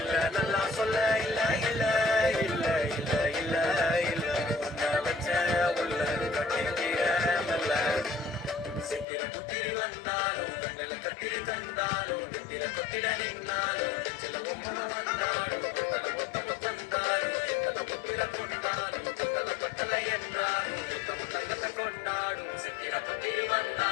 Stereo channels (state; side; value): drops out; right; at 9.1 s